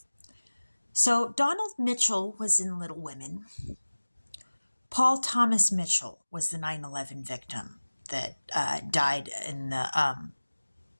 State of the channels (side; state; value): both; inverted; correlation -1.00